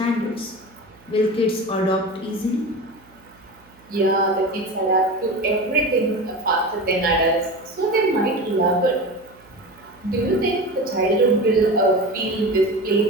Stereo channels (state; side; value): noise; right; hum, 29 dB below the sound